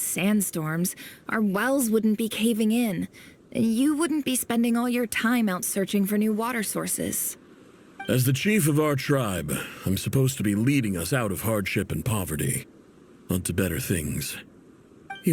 our wells wouldn't be caving in. And you wouldn't be spending all your time out searching for new water sources. As the chief of our tribe, I'm supposed to be leading us out of hardship and poverty, onto better things.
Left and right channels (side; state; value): both; identical; correlation 1.00